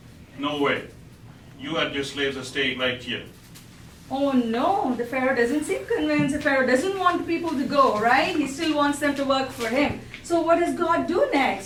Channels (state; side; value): identical; both; correlation 1.00